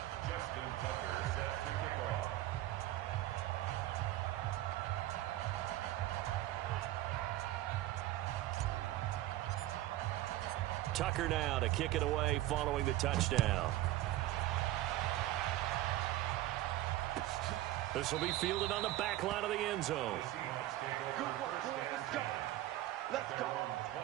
Justin Tucker set to kick off. Tucker now to kick it away following the touchdown. This will be fielded on the back line of the end zone. Good work, boys. Let's go. Let's go.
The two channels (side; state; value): left; quieter; 15.2 dB